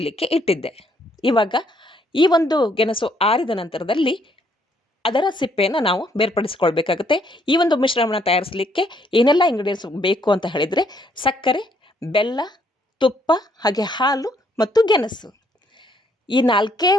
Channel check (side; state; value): both; normal; correlation 0.69